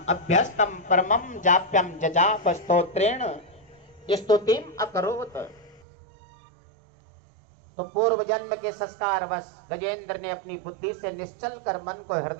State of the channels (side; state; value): left; drops out; at 5.8 s